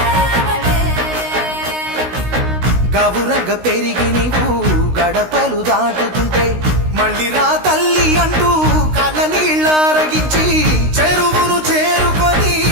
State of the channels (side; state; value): left; late; 16 ms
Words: గవురగ పెరిగి నీవు గడపలు దాటుతుంటే మళ్ళీ రా తల్లి అంటూ కళ్ళ నీళ్ళారగించి చెరువును చేరుకొని